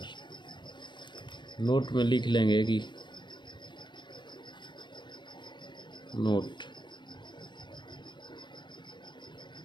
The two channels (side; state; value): right; late; 0.22 ms